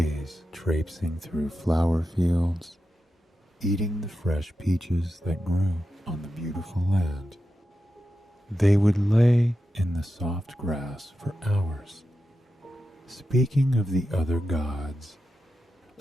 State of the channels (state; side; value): normal; both; correlation 0.90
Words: traipsing through flower fields, eating the fresh peaches that grew on the beautiful land. They would lay in the soft grass for hours, speaking of the other gods,